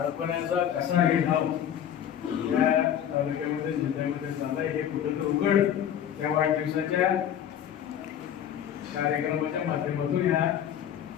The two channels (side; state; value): right; quieter; 9.8 dB